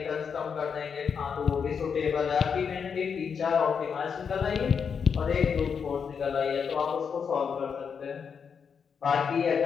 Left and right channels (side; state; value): right; quieter; 6.5 dB